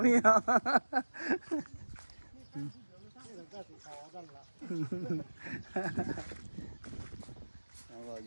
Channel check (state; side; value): inverted; both; correlation -1.00